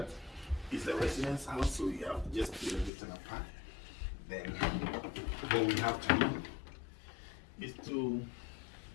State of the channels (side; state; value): right; drops out; at 2.9 s